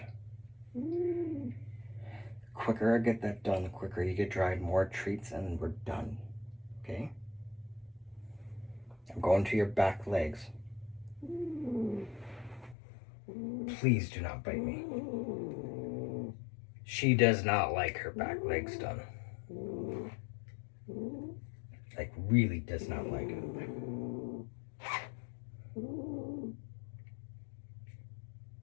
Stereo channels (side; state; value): right; drops out; at 12.8 s